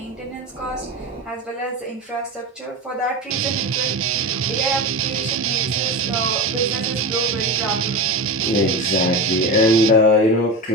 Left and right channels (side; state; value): both; normal; correlation 0.24